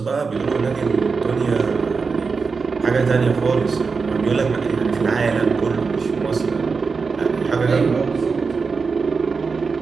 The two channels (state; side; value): quieter; left; 4.9 dB